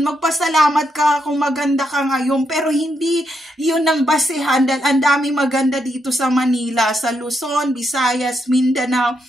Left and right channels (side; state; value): both; normal; correlation 0.80